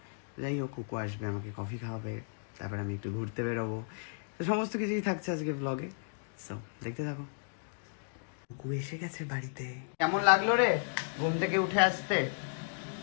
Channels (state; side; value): silent; right; digital silence